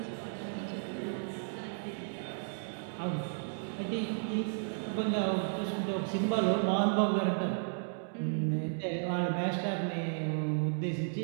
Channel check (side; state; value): left; silent; digital silence